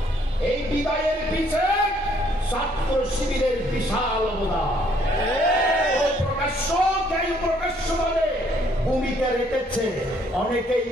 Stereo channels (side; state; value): both; normal; correlation 0.65